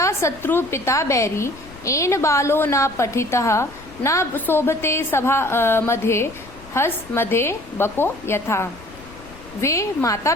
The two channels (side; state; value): left; noise; rumble, 20 dB below the sound